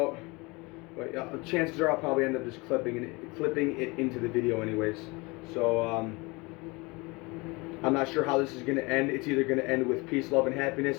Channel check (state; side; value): quieter; right; 25.6 dB